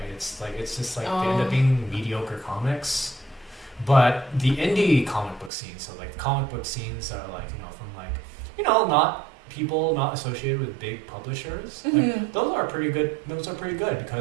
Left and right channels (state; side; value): drops out; left; at 5.5 s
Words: It's just like they end up Oh. being mediocre comics. But the indie comic book scene, so like the comic book scenes are like from like not people not associated with big publishers. Like, Mhm. those are pretty good. Those are pretty good